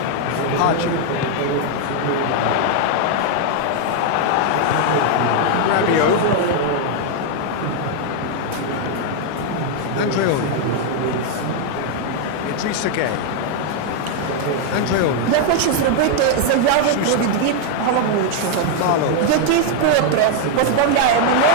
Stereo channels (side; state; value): both; different; correlation 0.00